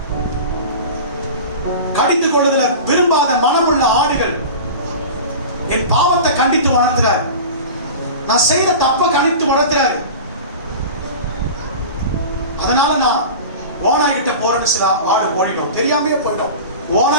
கடிந்து கொள்வதில் விரும்பாத மனமுள்ள ஆடுகள் என் பாவத்தை கண்டித்து வளர்த்துறாரு. நான் செய்த தப்ப கண்டித்து வளர்த்துறாரு. அதனால நான் ஓனாய் கிட்ட போறேன்னு சில ஆடு ஓடிடும், தெரியாமலே போயிடும்.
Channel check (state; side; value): inverted; both; correlation -0.33